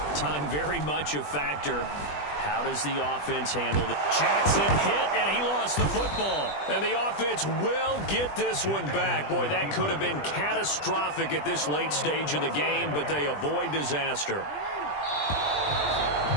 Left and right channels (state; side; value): late; right; 20 ms